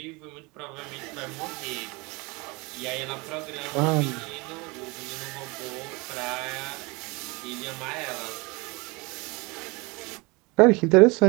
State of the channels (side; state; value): left; quieter; 26.5 dB